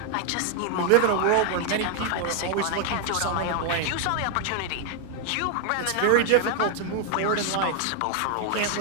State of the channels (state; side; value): different; both; correlation 0.00